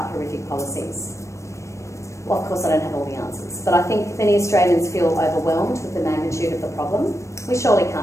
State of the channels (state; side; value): late; right; 0.15 ms